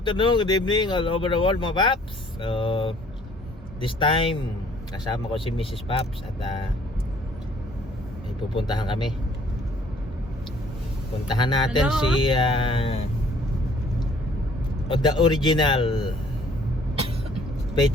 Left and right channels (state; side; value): normal; both; correlation 0.58